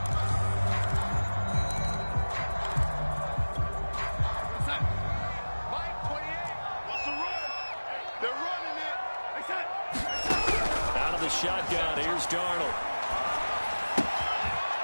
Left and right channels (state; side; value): inverted; both; correlation -1.00